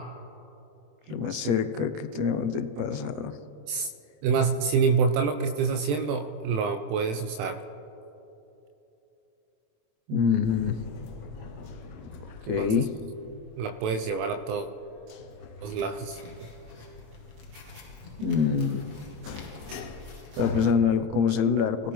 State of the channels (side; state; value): left; late; 27 ms